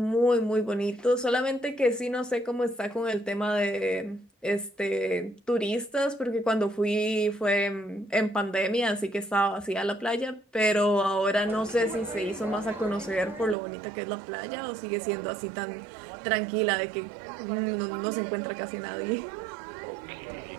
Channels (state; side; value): drops out; left; at 13.6 s